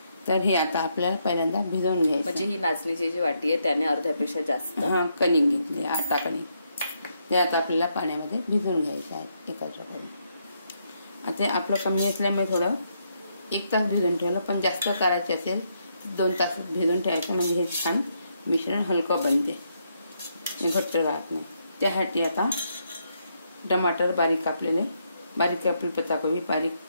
तर हे आता आपल्याला पहिल्यांदा भिजवून घ्यायचं। म्हणजे ही नाचणीची जी वाटी आहे त्याने अर्ध्यापेक्षा जास्त कणिक घेतली, आटा कणिक। ते आता आपल्याला पाण्यामध्ये भिजवून घ्यायचं आहे एकत्र करून। आता आपलं कमी असल्यामुळे थोडं 1 तास भिजवून ठेवलं, पण जास्त करायचे असेल 2 तास भिजवून ठेवायचं, म्हणजे हे छान मिश्रण हलकं बनते, घट्ट राहत नाही। त्यासाठी आता टमाटर बारीक कापलेले, बारीक कापलेली पत्ताकोबी, बारीक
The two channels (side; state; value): both; inverted; correlation -0.77